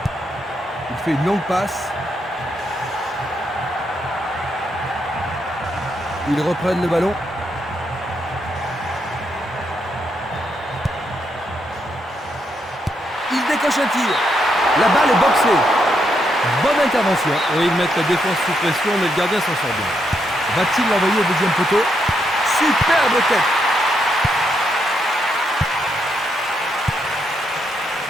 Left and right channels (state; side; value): normal; both; correlation 0.79